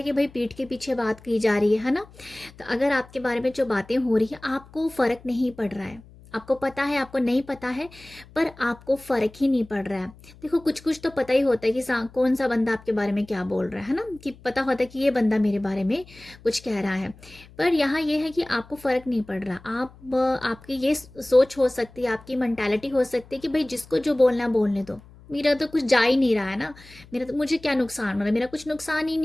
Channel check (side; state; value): left; noise; hum, 23 dB below the sound